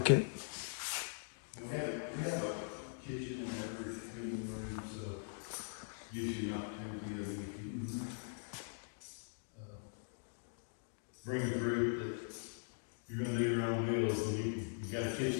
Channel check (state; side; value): silent; right; digital silence